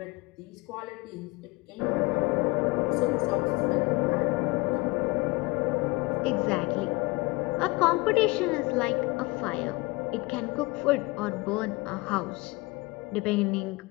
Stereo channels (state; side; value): quieter; right; 24.1 dB